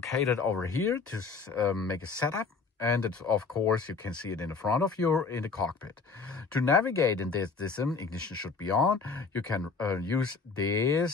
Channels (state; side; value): quieter; right; 4.8 dB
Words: over here to make a setup. And it's, of course, you can see it in the front of you in the cockpit. To navigate in this ignition should be on. You can use